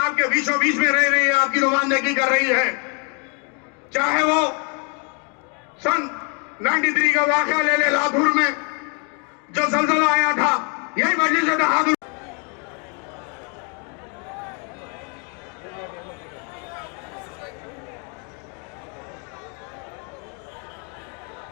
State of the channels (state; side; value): quieter; right; 36.8 dB